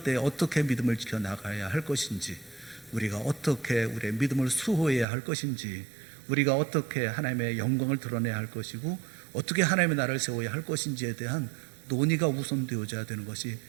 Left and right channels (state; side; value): drops out; left; at 5.1 s